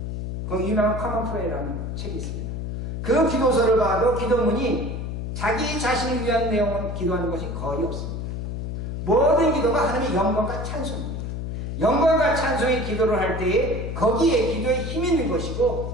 거기 유명한 커먼 프레이라는 책이 있습니다. 그 기도서를 봐도 기도문이 자기 자신을 위한 내용을 기도하는 것이 거의 없습니다. 모든 기도가 하나님의 영광과 찬송입니다. 영광과 찬송의 기도를 할 때에 거기에 기도에 힘이 있는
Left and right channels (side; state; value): left; noise; hum, 4 dB below the sound